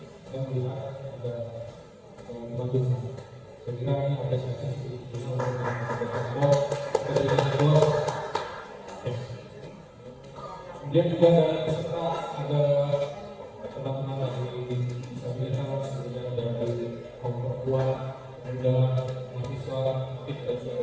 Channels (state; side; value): identical; both; correlation 1.00